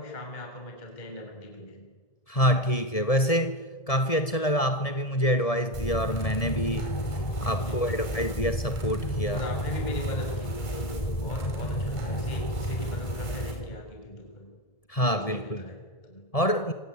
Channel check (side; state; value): right; late; 1.7 ms